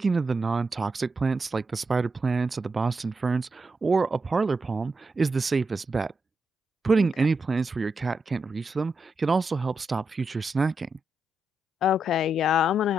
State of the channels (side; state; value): both; normal; correlation 0.84